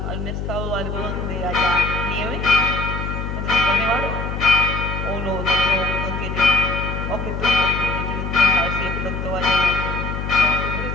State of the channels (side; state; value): left; noise; hum, 4 dB below the sound